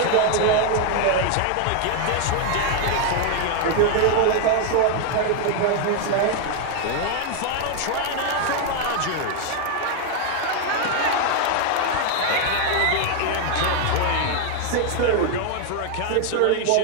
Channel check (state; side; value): different; both; correlation 0.00